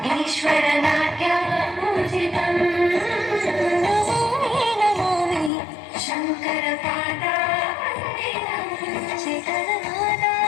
ಈಶ್ವರ ನಾಟ್ಯ ಪೂಜಿತಂ ನಮಾಮಿ ನಮಾಮಿ ಶಂಕರ ಪಾದ ವಂದಿತಂ ಶಿಖರನಾದ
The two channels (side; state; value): right; drops out; at 5.5 s